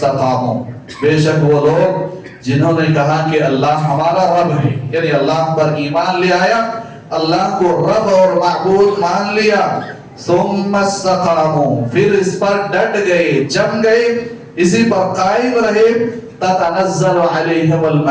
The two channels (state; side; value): identical; both; correlation 1.00